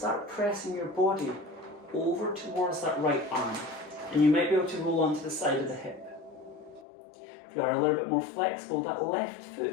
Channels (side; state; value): right; drops out; at 6.9 s